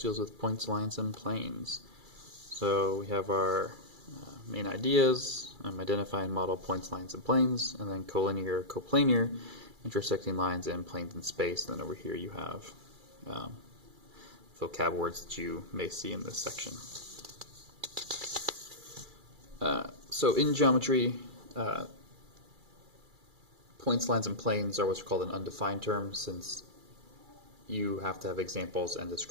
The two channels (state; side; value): late; left; 2.3 ms